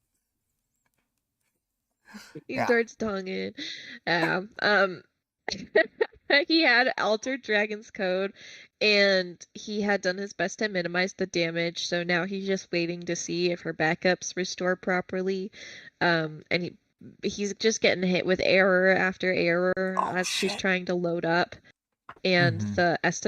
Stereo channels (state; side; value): identical; both; correlation 1.00